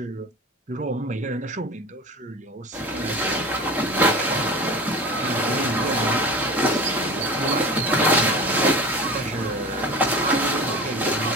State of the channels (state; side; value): normal; both; correlation 0.33